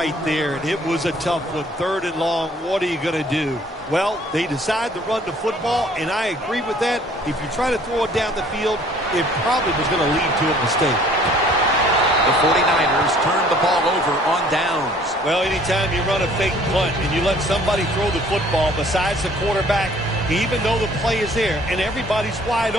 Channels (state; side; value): normal; both; correlation 0.56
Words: there, and it was a tough one. 3rd and long, what are you going to do? Well, they decide to run the football, and I agree with that. If you try to throw it down the field, it probably was going to lead to a mistake. The 49ers turn the ball over on downs. Well, anytime you run a fake punt and you let somebody throw the football besides the quarterback, even though the play is there and everybody's wide